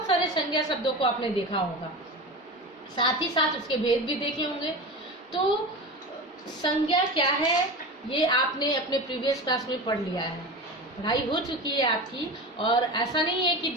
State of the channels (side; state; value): both; normal; correlation 0.28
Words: सारे संज्ञा शब्दों को आपने देखा होगा, साथ ही साथ उसके भेद भी देखे होंगे। तो संज्ञा क्या है ये आपने अपने प्रीवियस क्लास में पढ़ लिया है, पढ़ाई हो चुकी है आपकी। और ऐसा नहीं है कि